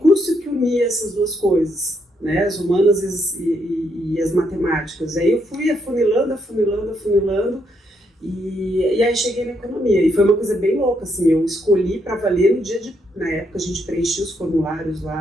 que unia essas duas coisas, né? As humanas e as matemáticas. Aí eu fui afunilando. E aí cheguei na economia, e foi uma coisa bem louca, assim, eu escolhi para valer no dia na época a gente preenchia os formulários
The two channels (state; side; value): normal; both; correlation 0.76